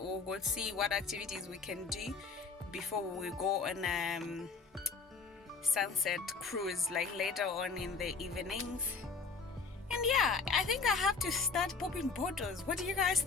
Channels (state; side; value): quieter; right; 4.7 dB